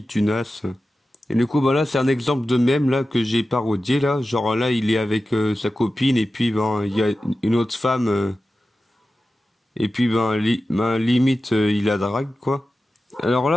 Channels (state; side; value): normal; both; correlation 0.94